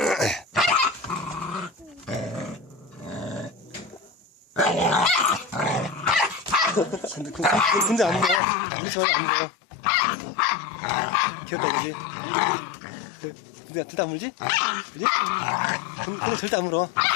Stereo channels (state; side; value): drops out; right; at 8.4 s